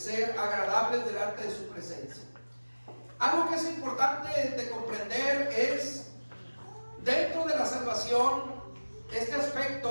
agradables delante de su presencia. Algo que es importante de comprender es, dentro de la salvación, este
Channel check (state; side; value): inverted; both; correlation -1.00